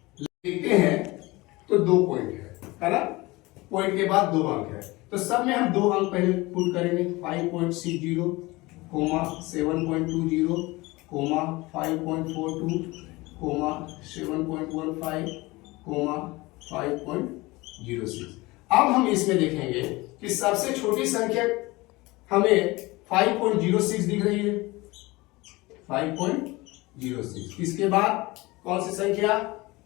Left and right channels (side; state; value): right; quieter; 21.9 dB